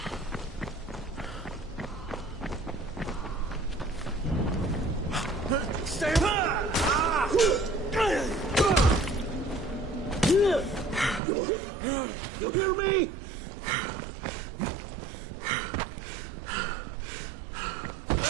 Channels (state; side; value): drops out; left; at 11.2 s